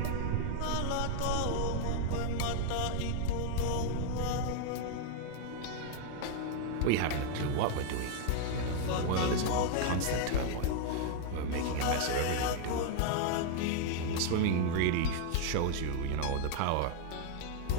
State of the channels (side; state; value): both; different; correlation 0.00